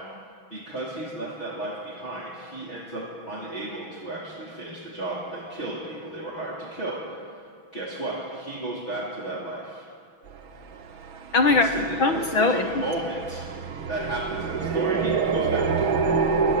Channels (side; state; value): right; late; 6.2 ms